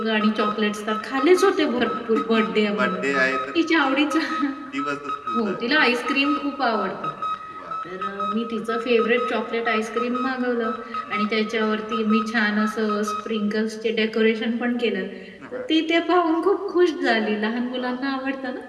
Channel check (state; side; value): identical; both; correlation 1.00